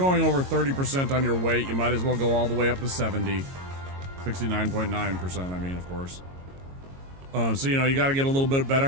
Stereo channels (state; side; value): late; left; 22 ms